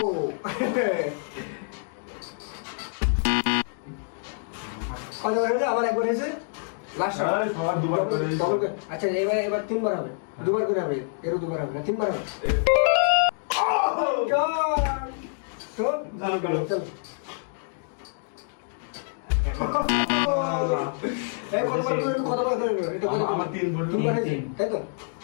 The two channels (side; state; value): right; silent; digital silence